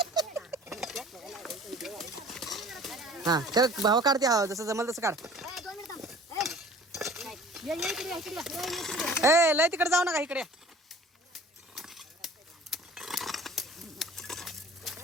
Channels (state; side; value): normal; both; correlation 0.47